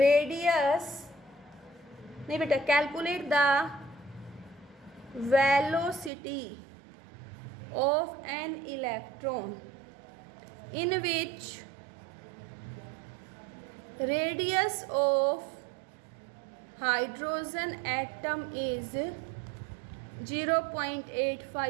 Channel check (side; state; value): left; drops out; at 6.1 s